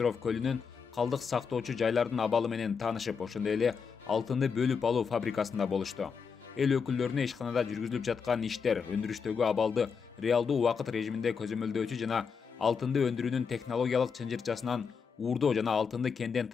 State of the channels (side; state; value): right; quieter; 6.0 dB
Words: көлүнүн калдык сактоочу жайлардын абалы менен таанышып, ошондой эле алтынды бөлүп алуу фабрикасында болушту. Эл өкүлдөрүнө ишканада жүргүзүлүп жаткан иштер, өндүрүштөгү абалды реалдуу убакыт режиминде көзөмөлдөөчү жана алтынды өндүрүүнүн технологиялык чынжырчасынан уурдоо жана алтынды кенден